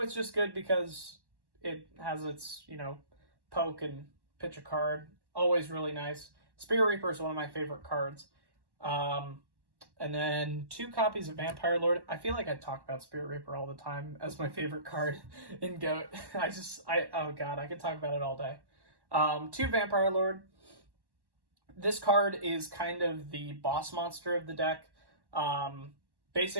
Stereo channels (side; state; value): left; late; 1.1 ms